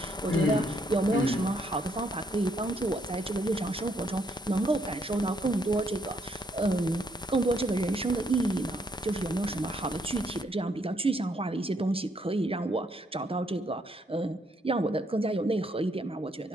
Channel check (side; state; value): both; normal; correlation 0.72